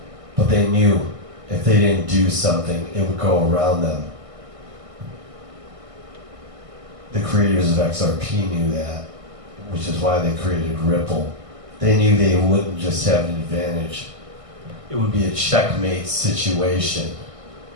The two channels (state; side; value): late; left; 1.6 ms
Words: but they knew if they didn't do something, it would go around them. The creators of XRP knew that, which is why they created Ripple. They knew they wouldn't just have an advantage. It would be a checkmate situation.